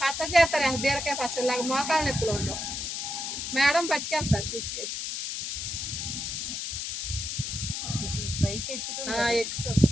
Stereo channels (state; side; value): noise; left; hiss, 4 dB below the sound